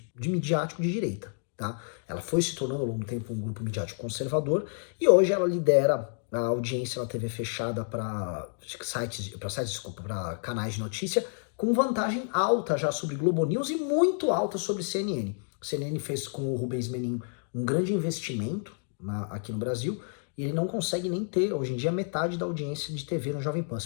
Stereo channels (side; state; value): right; silent; 58 dB below the other